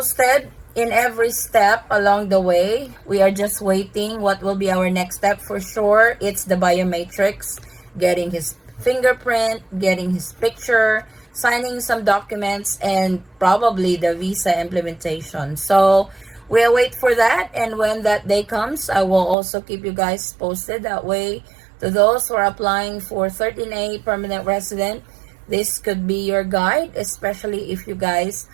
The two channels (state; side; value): drops out; left; at 19.4 s